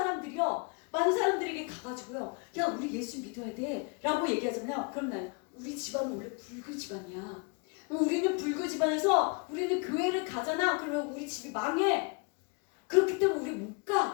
사람들에게 가가지고요, 야, 우리 예수 믿어야 돼 라고 얘기하잖아요. 그럼 나요, 우리 집안은 원래 불교 집안이야. 우리는 불교 집안에서 우리는 교회를 가잖아. 그러면 우리 집이 망해. 그렇기 때문에 우리 못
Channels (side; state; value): right; quieter; 32.4 dB